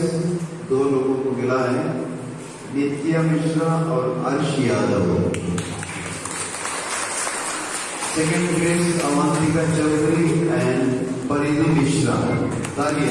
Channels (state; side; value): identical; both; correlation 1.00